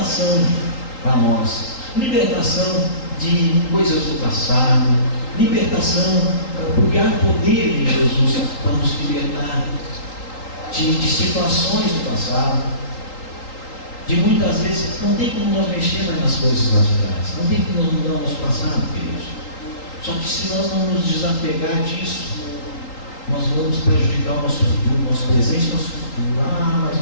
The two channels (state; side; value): late; right; 3.8 ms